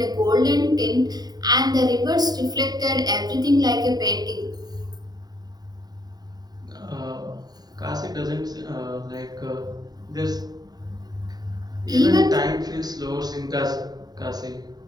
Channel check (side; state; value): left; late; 0.19 ms